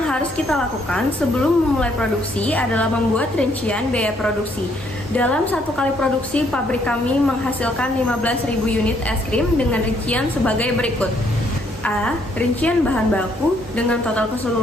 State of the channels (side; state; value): both; normal; correlation 0.69